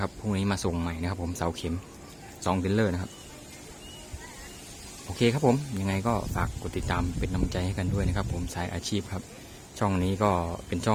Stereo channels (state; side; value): identical; both; correlation 1.00